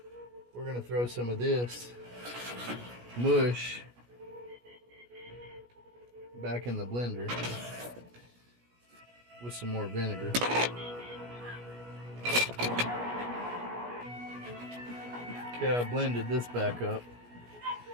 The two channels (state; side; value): late; left; 17 ms